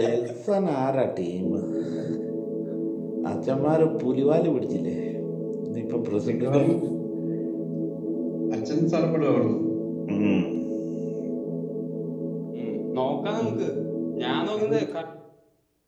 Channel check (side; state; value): both; identical; correlation 1.00